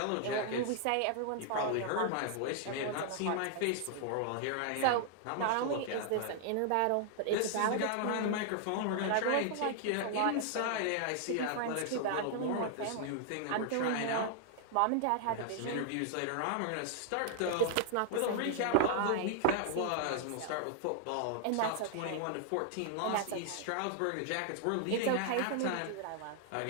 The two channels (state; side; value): different; both; correlation 0.00